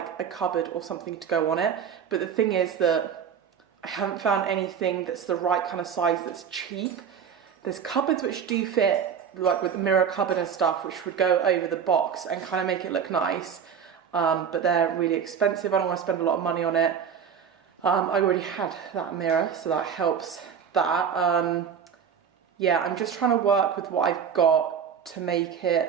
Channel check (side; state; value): left; quieter; 7.5 dB